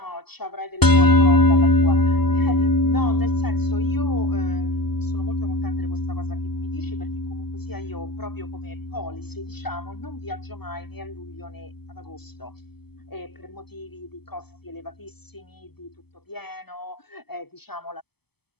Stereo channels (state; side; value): late; right; 0.97 ms